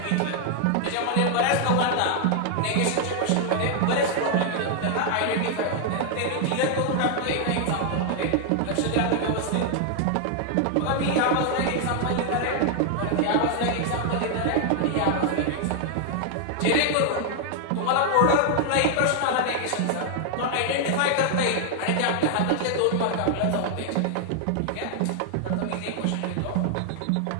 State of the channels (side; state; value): both; different; correlation 0.00